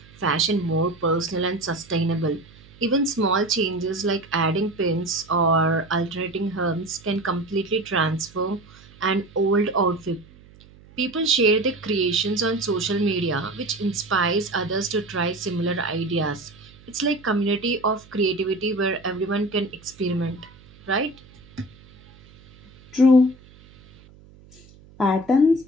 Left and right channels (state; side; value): noise; right; hum, 24 dB below the sound